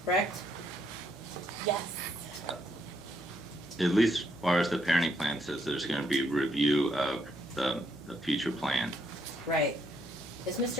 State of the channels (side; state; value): both; normal; correlation 0.74